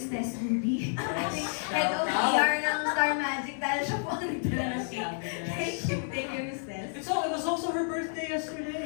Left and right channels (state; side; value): silent; right; 58 dB below the other